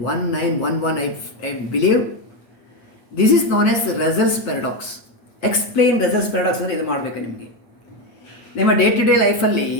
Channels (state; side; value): late; right; 8.5 ms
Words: I believe. This is known as Russell's paradox. Explain Russell's paradox ಅಂದರೆ ಇದು ಮಾಡಬೇಕು ನಿಮಗೆ. ನಿಮ್ಮ day to day ಲೈಫಲ್ಲಿ